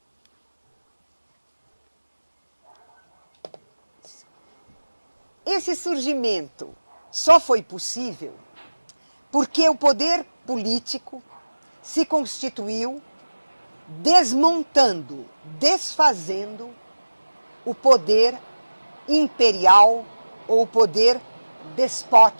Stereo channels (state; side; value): inverted; both; correlation -1.00